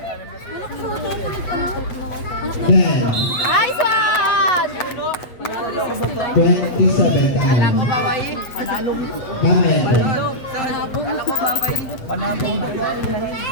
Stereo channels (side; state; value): right; late; 8.1 ms